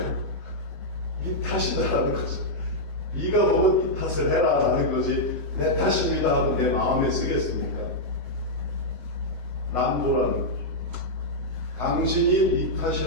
네 탓이다라는 거죠. 네가 보면 네 탓을 해라 라는 거지 내 탓입니다 하고 내 마음에 쓰겠습니까? 남보라는 거죠. 당신이 네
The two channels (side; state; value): left; late; 8.3 ms